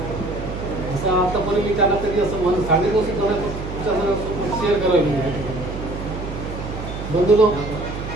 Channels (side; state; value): right; noise; hum, 8 dB below the sound